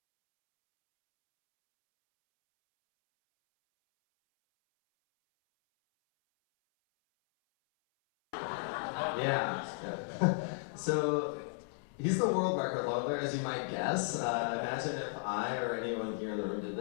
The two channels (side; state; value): right; silent; 55 dB below the other